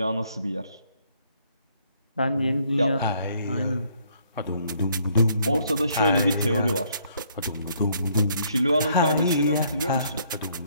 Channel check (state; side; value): inverted; both; correlation -0.67